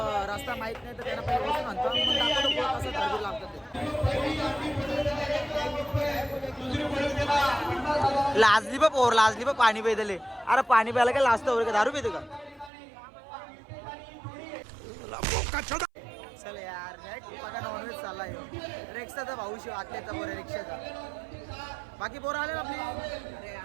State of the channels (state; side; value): drops out; left; at 12.7 s